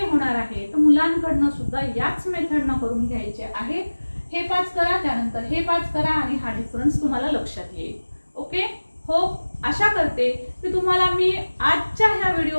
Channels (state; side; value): inverted; both; correlation -1.00